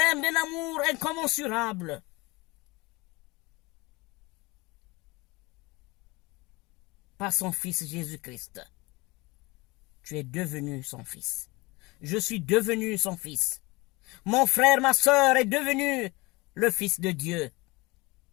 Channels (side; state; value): right; quieter; 23.6 dB